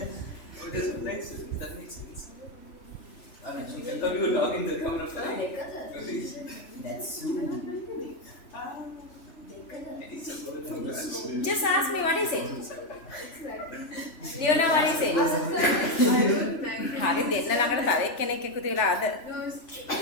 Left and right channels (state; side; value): late; right; 3.2 ms